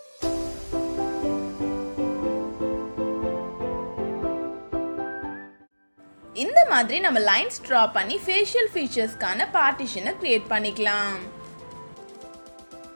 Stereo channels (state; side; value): inverted; both; correlation -1.00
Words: இந்த மாதிரி நம்ம லைன்ஸ் ட்ரா பண்ணி ஃபேஷியல் ஃபீச்சர்ஸ்க்கான பார்ட்டிஷனை கிரியேட் பண்ணிக்கலாம்.